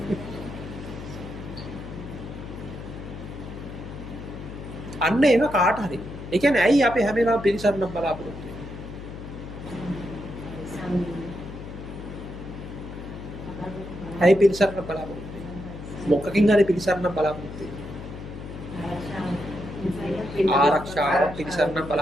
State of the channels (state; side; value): noise; left; hum, 11 dB below the sound